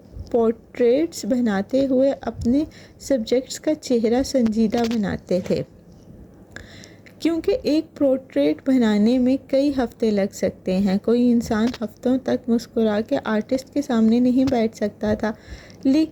پورٹریٹس بناتے ہوئے اپنے سبجیکٹس کا چہرہ سنجیدہ بناتے تھے، کیونکہ ایک پورٹریٹ بنانے میں کئی ہفتے لگ سکتے ہیں۔ کوئی انسان ہفتوں تک مسکرا کے آرٹسٹ کے سامنے نہیں بیٹھ سکتا تھا،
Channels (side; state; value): both; identical; correlation 1.00